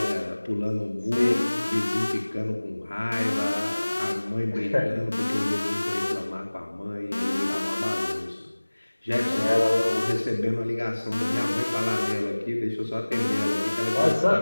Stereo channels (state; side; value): inverted; both; correlation -1.00